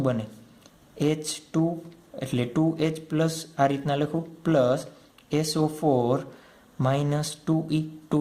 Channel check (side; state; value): both; identical; correlation 1.00